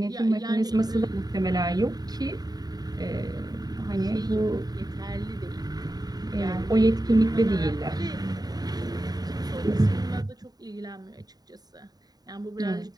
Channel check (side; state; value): left; late; 0.19 ms